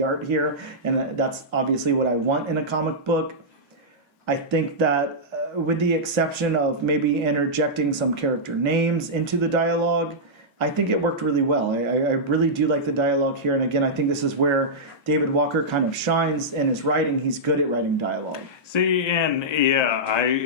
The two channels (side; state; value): both; normal; correlation -0.11